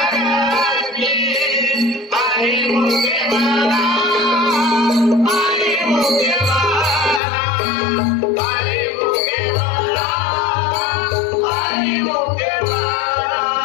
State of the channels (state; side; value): drops out; right; at 7.2 s